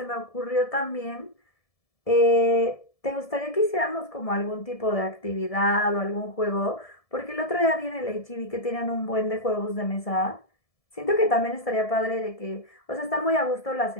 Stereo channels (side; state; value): right; late; 1.7 ms